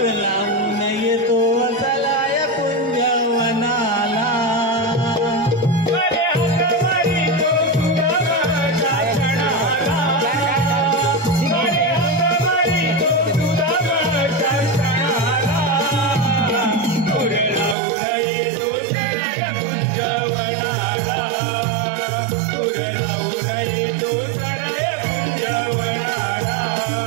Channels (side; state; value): left; drops out; at 17.8 s